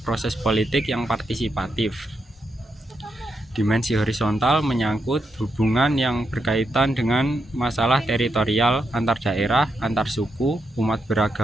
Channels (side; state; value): both; normal; correlation 0.83